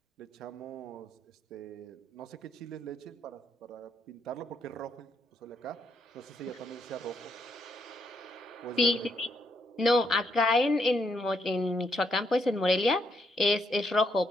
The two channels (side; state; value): both; normal; correlation 0.76